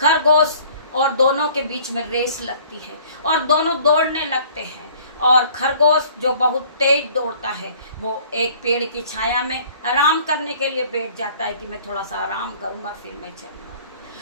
और दोनों के बीच में रेस लगती है और दोनों दौड़ने लगते हैं और खरगोश जो बहुत तेज दौड़ता है वो एक पेड़ की छाया में आराम करने के लिए बैठ जाता है कि मैं थोड़ा सा आराम करूंगा फिर मैं चलूंगा।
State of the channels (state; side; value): inverted; both; correlation -0.53